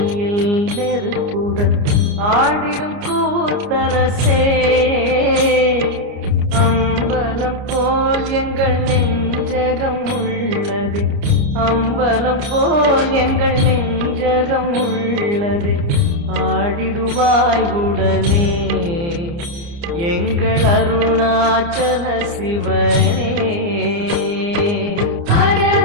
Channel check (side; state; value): left; late; 29 ms